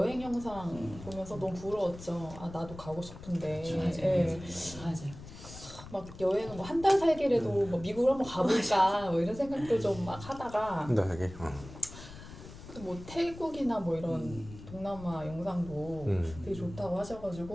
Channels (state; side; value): noise; left; rumble, 15 dB below the sound